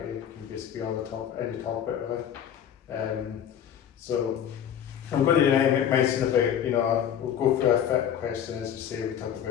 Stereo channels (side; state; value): right; quieter; 9.3 dB